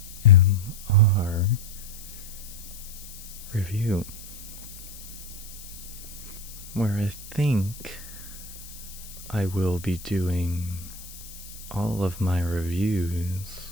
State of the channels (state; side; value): noise; left; hiss, 15 dB below the sound